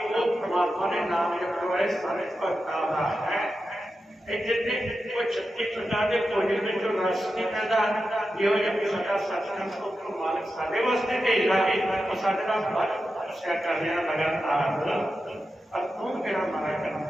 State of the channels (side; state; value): both; normal; correlation 0.90